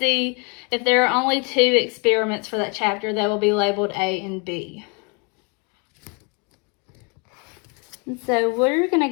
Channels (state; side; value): quieter; right; 32.9 dB